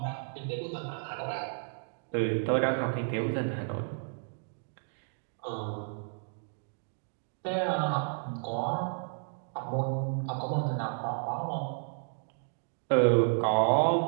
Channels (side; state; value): left; silent; digital silence